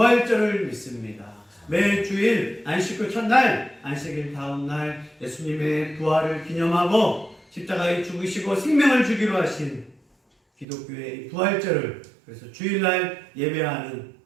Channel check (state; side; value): drops out; left; at 10.7 s